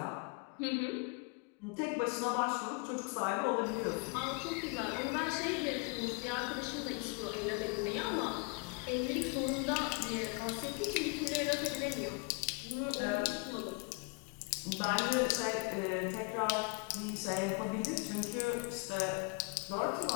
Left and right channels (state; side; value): quieter; right; 32.7 dB